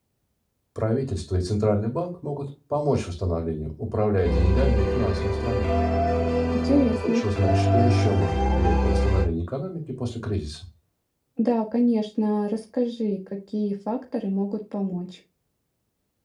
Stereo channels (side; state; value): both; identical; correlation 1.00